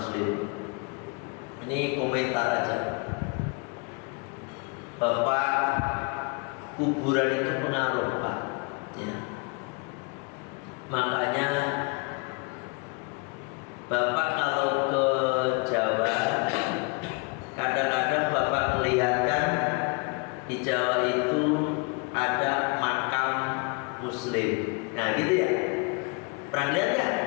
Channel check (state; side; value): quieter; right; 32.9 dB